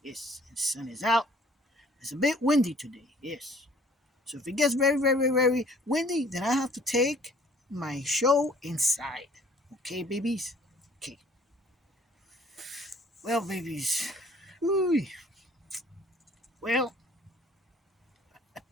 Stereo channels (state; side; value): normal; both; correlation 0.56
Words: Yes. The sun is out. It's a bit windy today. Yes. So if it gets very windy, then I have to take my show inside. Okay, babies? Okay. Well, babies. Ooh. Well,